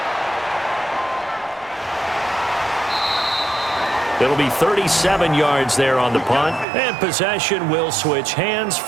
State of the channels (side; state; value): left; drops out; at 6.7 s